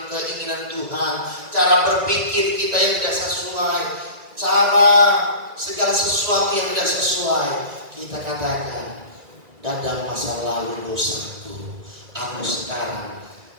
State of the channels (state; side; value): late; left; 1.9 ms